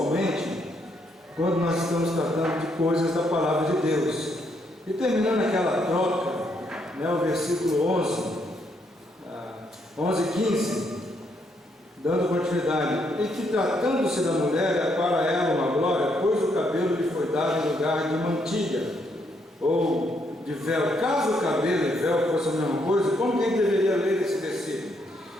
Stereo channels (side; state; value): both; normal; correlation 0.74